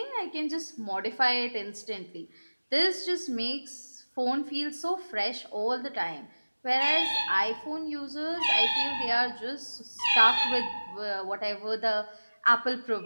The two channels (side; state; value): both; inverted; correlation -1.00